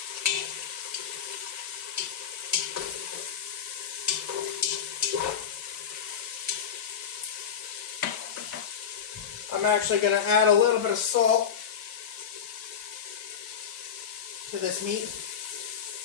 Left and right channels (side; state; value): right; quieter; 7.7 dB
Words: I'm actually going to add a little bit of salt to this meat.